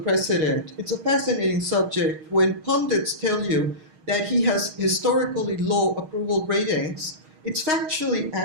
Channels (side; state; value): left; late; 6.4 ms